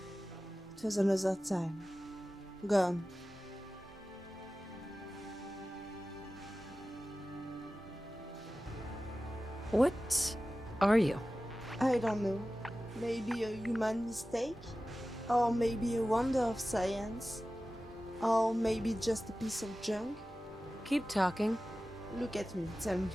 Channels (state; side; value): normal; both; correlation 0.95